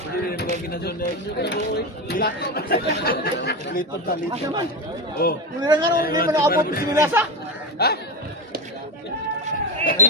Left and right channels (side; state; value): both; normal; correlation 0.18